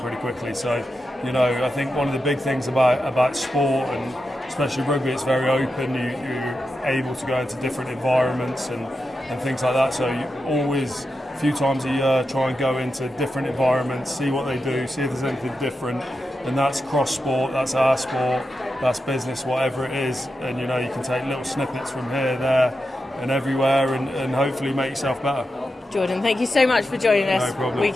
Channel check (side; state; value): both; normal; correlation 0.89